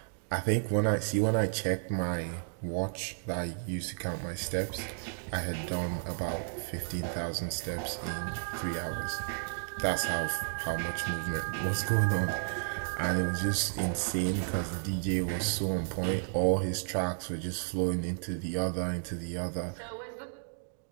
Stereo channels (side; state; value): left; silent; digital silence